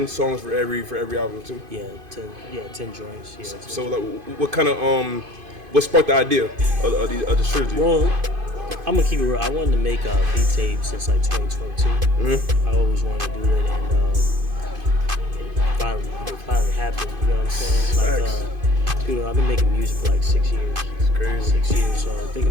songs for every album too. Yeah, 10 joints. Yeah. So like, what kind of what sparked the idea of the trilogy? Well, I'm gonna keep it real. I wanted to make a beat tape since like 2022. Mm-hmm. I always wanted to do it, and it finally happened. You know what I'm saying? Like, dude, I've been making music for like 6 years. It's crazy. 6 years. So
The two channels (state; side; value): late; left; 2.5 ms